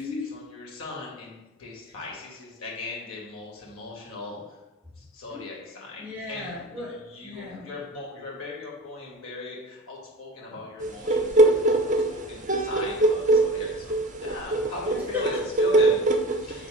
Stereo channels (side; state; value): both; normal; correlation 0.34